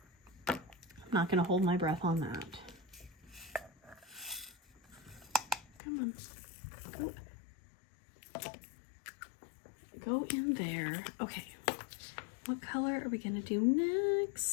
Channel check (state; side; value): drops out; right; at 5.8 s